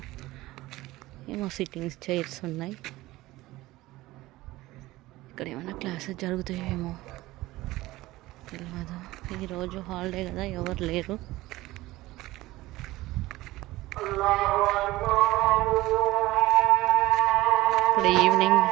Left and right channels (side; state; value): left; quieter; 18.2 dB